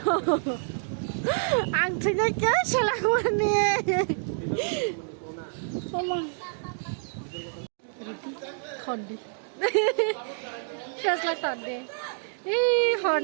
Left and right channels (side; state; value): left; silent; digital silence